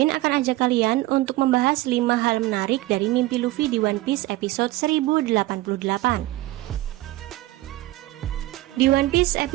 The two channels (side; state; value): left; quieter; 17.7 dB